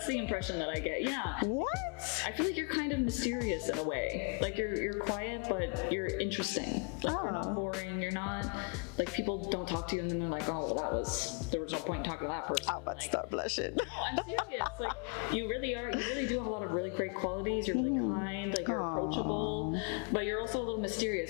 the impression that I get. Yeah. What? I feel like you're kind of mysterious in a way. Like you're quiet, but you're interesting. Like you're not boring. You're not like, people don't talk to you and then they're like, oh, well, there was no point in talking to that person. I'm about to start blushing. No, I'm serious. Like, you really do have a lot of really great qualities. You're really kind, like you're approachable, but you're also a little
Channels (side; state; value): right; quieter; 36.4 dB